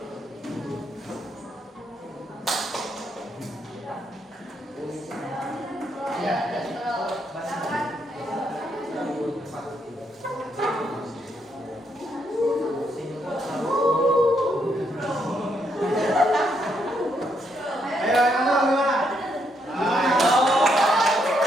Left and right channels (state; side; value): normal; both; correlation 0.76